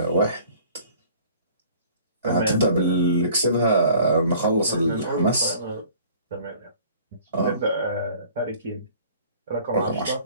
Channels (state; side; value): inverted; both; correlation -0.50